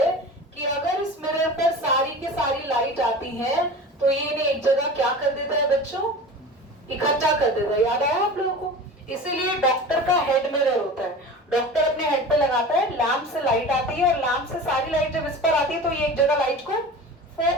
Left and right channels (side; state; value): both; normal; correlation 0.35